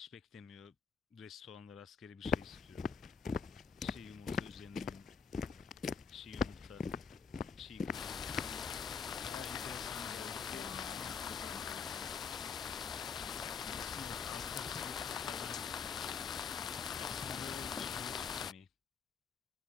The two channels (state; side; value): quieter; right; 6.0 dB